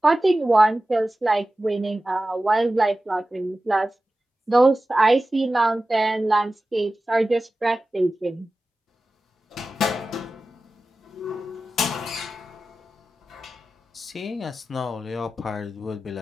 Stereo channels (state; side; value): normal; both; correlation 0.95